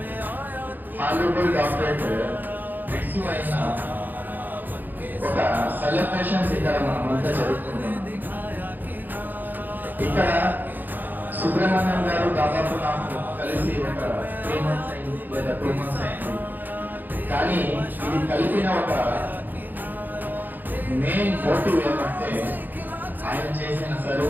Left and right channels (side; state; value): left; late; 0.087 ms